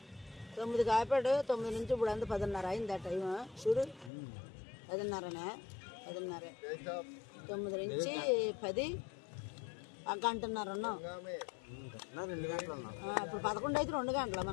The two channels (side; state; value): right; drops out; at 4.1 s